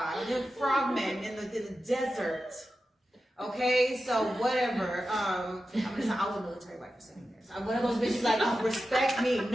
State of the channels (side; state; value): both; normal; correlation 0.92